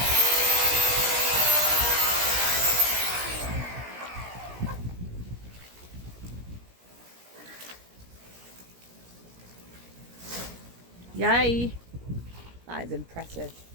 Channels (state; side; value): late; left; 17 ms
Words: Yay. That is impressive.